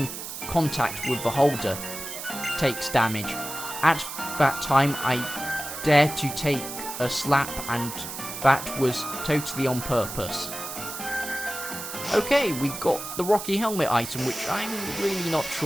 contact with the holder. Takes damage. At that time, I dared to take a slap, and that was totally on purpose. Okay, we got the Rocky Helmet item, which I'm really not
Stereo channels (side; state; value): right; noise; hiss, 8 dB below the sound